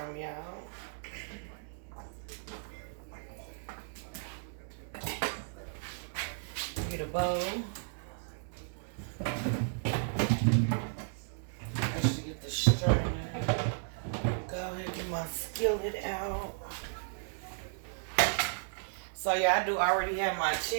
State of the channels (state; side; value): silent; left; digital silence